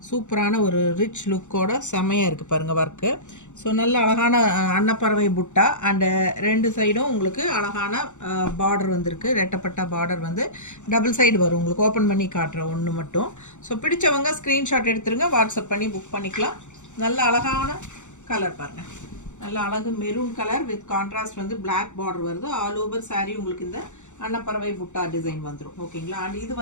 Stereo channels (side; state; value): right; late; 0.85 ms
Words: சூப்பரான ஒரு ரிச் லுக்கோட செமையாக இருக்குது பாருங்கள் ஒர்க்கு. ஸோ நல்ல அழகான அன்னப்பறவை புட்டா அண்டு ரெண்டு சைடும் உங்களுக்கு அழகான பார்டர் வந்திருக்கு. ரெட்டப்பட்ட பார்டர் வந்து டபுள் சைடு வரும் உங்களுக்கு. ஓப்பன் பண்ணி காட்டுற ஒன்று மட்டும். ஸோ பிடிச்சவங்க ஸ்க்ரீன்ஷாட் எடுத்துருங்க, வாட்ஸ்அப் பண்ணி புக் பண்ணிக்கலாம். நல்ல அழகான கலர் பாருங்கள், நல்ல அழகு மெரூன் கலர் வித் கான்ட்ராஸ்ட் வந்து பிளாக் பார்டர் வருது. ஆல் ஓவர் saree உங்களுக்கு இந்த அன்னப்பறவை புட்டா டிசைன் வந்துடும். ஓகேங்களா? அண்ட் இது